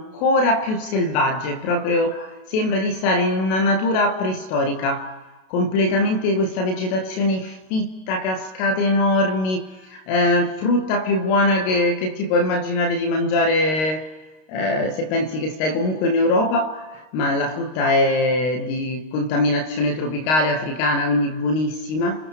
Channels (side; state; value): right; late; 32 ms